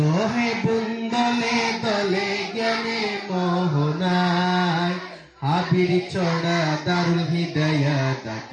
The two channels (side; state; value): both; identical; correlation 1.00